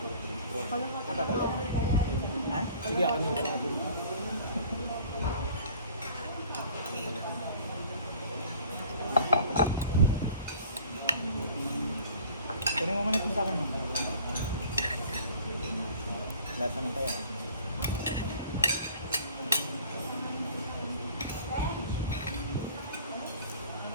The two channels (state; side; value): inverted; both; correlation -0.49